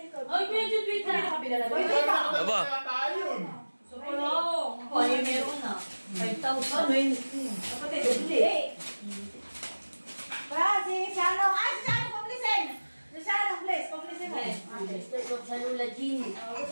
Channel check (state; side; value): inverted; both; correlation -1.00